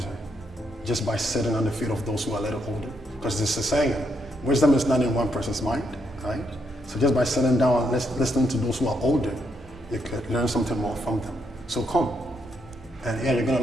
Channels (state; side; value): normal; both; correlation 0.78